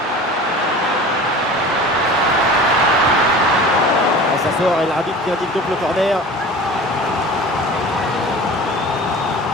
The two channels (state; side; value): normal; both; correlation 0.39